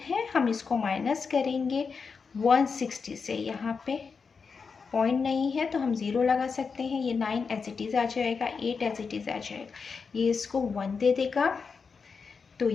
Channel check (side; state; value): right; quieter; 5.3 dB